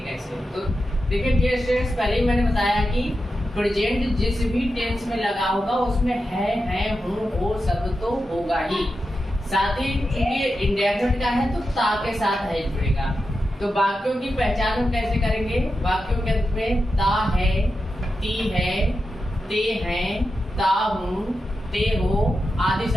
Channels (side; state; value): both; normal; correlation 0.89